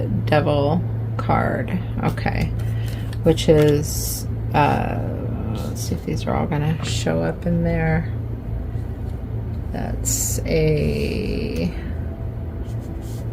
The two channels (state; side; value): identical; both; correlation 1.00